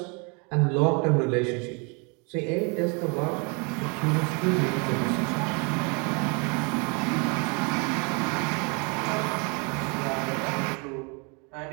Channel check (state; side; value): quieter; left; 32.1 dB